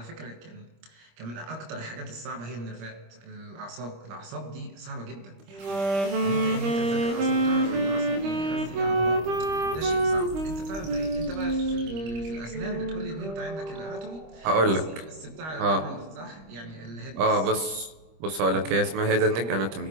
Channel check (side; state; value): left; late; 25 ms